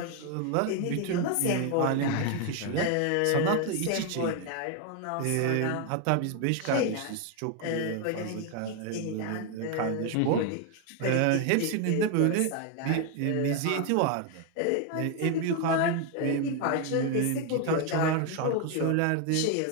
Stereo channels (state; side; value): different; both; correlation 0.01